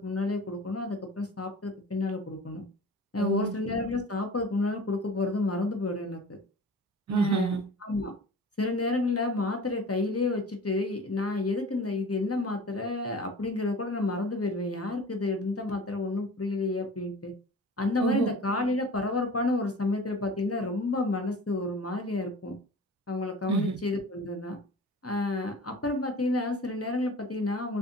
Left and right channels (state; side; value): normal; both; correlation 0.41